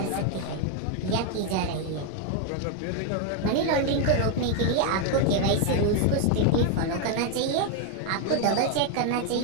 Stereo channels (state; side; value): different; both; correlation 0.01